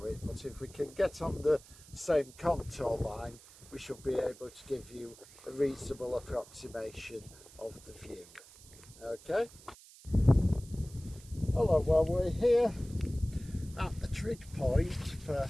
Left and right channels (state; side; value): noise; right; hiss, 21 dB below the sound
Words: it, but if we can get on the same contour line, we should be able to give you a reasonable approximation of the view. Okay? Hello, well we're here at the trig point for